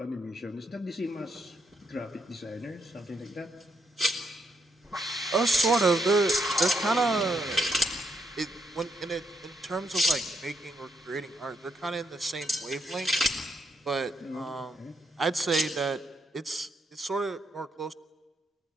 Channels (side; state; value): both; normal; correlation 0.77